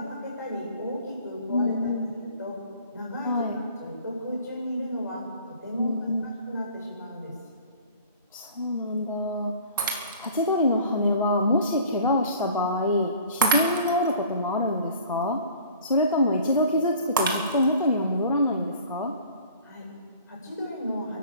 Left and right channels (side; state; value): both; inverted; correlation -0.48